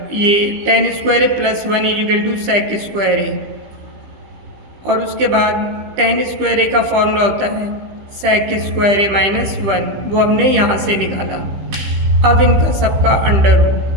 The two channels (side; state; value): left; late; 15 ms